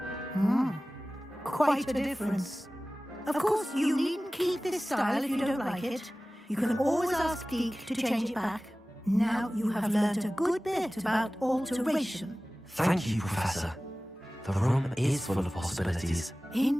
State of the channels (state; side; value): normal; both; correlation 0.97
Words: Quite a difference. Of course, you needn't keep this style if you don't like it. You can always ask Deke to change it back. Now you have learnt a good bit about alteration. Thank you, Professor. The room is full of possibilities.